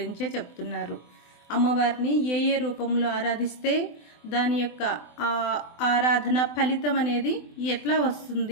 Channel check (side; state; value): right; late; 24 ms